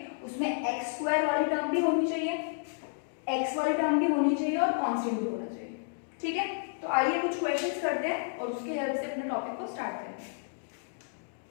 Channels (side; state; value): right; silent; digital silence